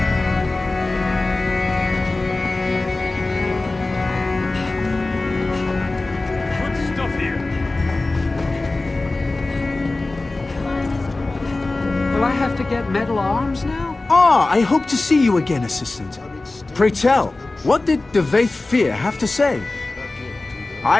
Will I have to get metal arms now? Ah, I hope to see you again, Assistant. Pray tell, what did Devaith Fear have to say?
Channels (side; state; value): right; quieter; 3.1 dB